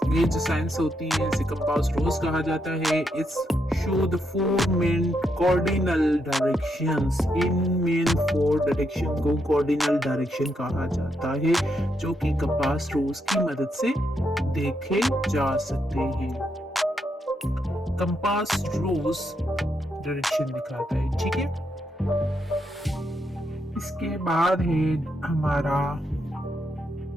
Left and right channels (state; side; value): normal; both; correlation 0.80